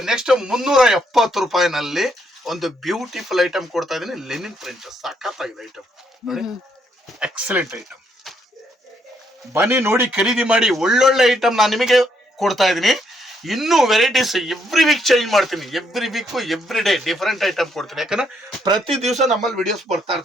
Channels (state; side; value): normal; both; correlation 0.74